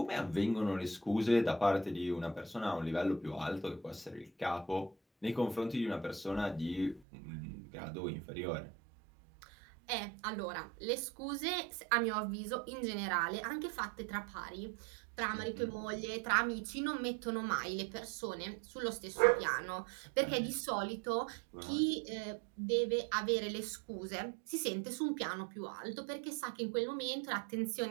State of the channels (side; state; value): left; drops out; at 7.1 s